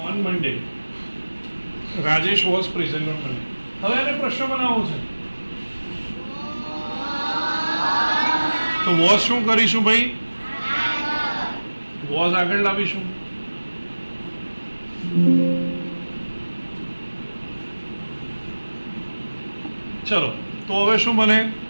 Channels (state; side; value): inverted; both; correlation -1.00